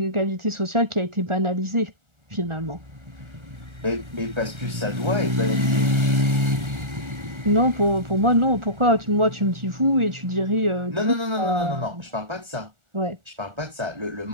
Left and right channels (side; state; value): left; late; 1.3 ms